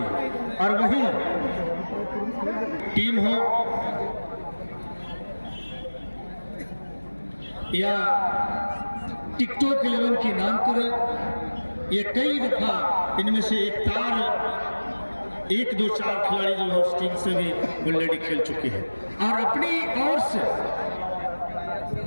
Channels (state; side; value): inverted; both; correlation -1.00